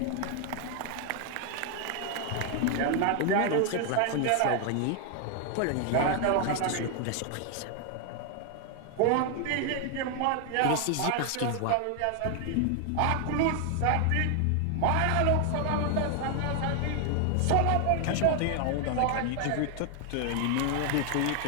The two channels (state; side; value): different; both; correlation 0.00